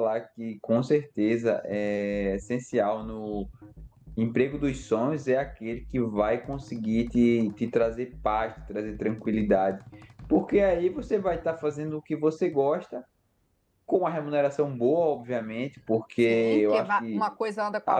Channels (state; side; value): identical; both; correlation 1.00